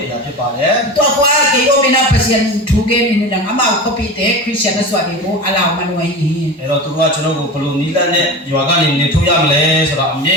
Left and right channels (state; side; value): normal; both; correlation 0.29